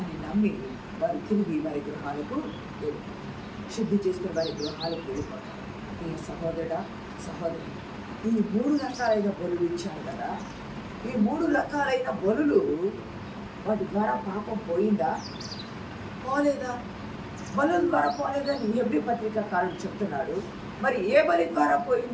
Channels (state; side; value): identical; both; correlation 1.00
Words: నమ్మి వారు తిరిగి వారి గృహాలకు శుద్ధి చేసుకుని వారి గృహాలకు వెళ్ళిపోతారు. ఈ సహోదరుడా, సహోదరి, ఈ 3 రకాలైన బలులు ఇచ్చారు కదా. ఈ 3 రకాలైన బలులు వాటి ద్వారా పాపం పోయిందా పోలేదా? బలుల ద్వారా పోలేదని హెబ్రీ పత్రికాకారుడు చెప్తున్నాడు. మరి ఏ బలి ద్వారా